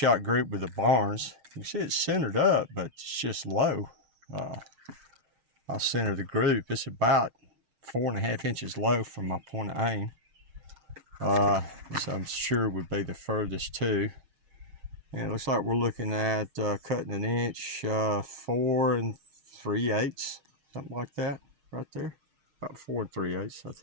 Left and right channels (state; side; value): late; left; 6.4 ms